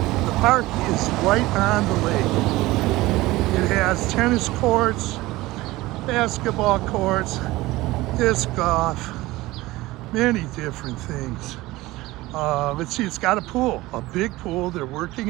park is right on the lake. It has tennis courts, basketball courts, disc golf, many different things. Let's see, it's got a pool, a big pool. They're working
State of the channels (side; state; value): left; quieter; 18.9 dB